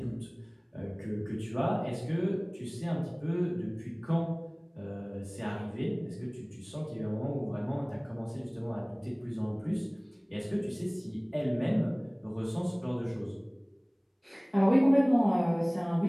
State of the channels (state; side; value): identical; both; correlation 1.00